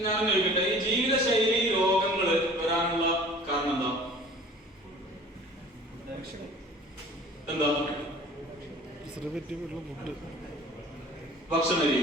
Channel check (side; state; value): both; normal; correlation 0.47